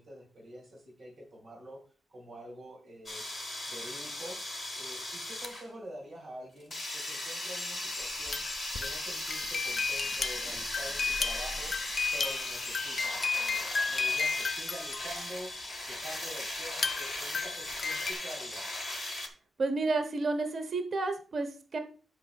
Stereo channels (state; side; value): normal; both; correlation 0.85